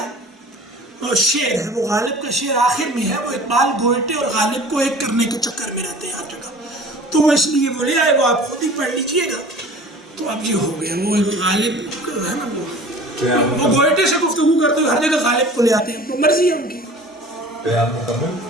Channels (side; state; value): both; normal; correlation 0.44